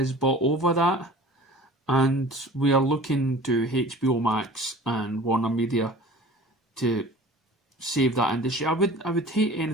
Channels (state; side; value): normal; both; correlation 0.43